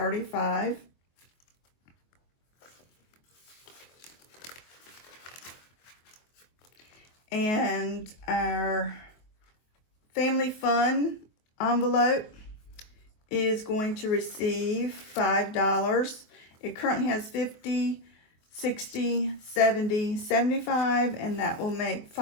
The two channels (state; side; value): late; right; 23 ms